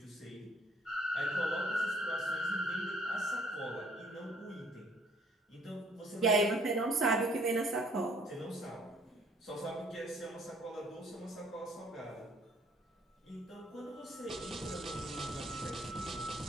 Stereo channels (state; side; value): normal; both; correlation 0.61